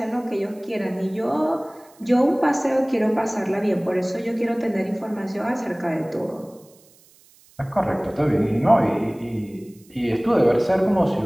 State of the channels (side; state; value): right; noise; hiss, 28 dB below the sound